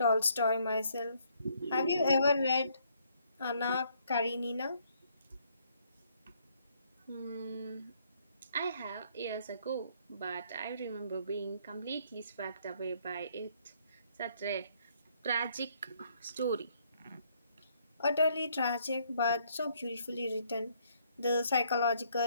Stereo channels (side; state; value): both; inverted; correlation -0.67